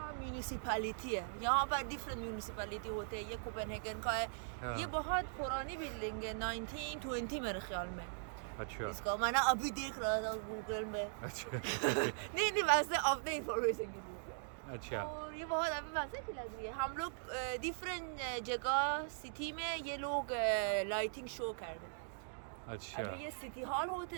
म्यूनिसिपैलिटी है। यहाँ पर डिफरेंट म्यूनिसिपैलिटी होते हैं। ये कोपेनहेगन का है। हाँ। ये बहुत पुरानी बिल्डिंग है, 1920 मेरे ख्याल में। अच्छा इसका मैंने अभी देख रहा था गूगल में। अच्छा नहीं वैसे अपने इंफॉर्मेशन के लिए। अच्छा और ये बहुत अभी वैसे की लग रही है। हम लोग डिफरेंट जगह सिटी में ये लोग लाइटिंग शो कर रहे हैं। अच्छा अभी ये सिटी हॉल होते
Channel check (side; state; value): left; silent; digital silence